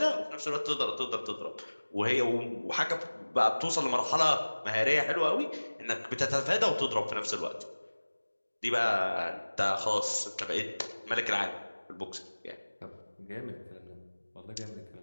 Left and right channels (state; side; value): inverted; both; correlation -1.00